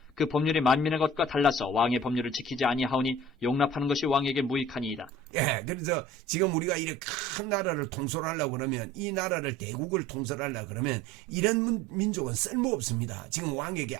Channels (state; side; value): normal; both; correlation 0.45